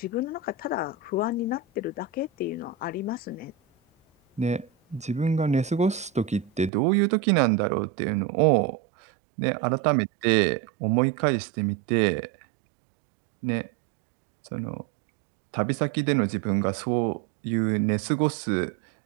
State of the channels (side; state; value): left; drops out; at 6.7 s